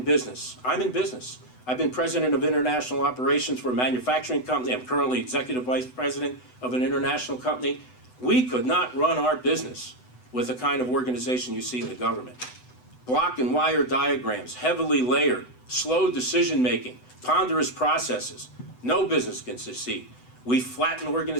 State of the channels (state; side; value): late; right; 8.0 ms